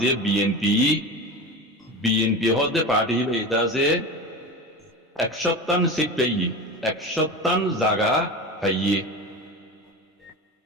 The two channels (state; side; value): normal; both; correlation 0.27